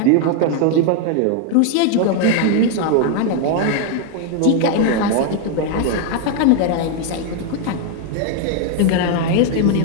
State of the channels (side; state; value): both; different; correlation 0.01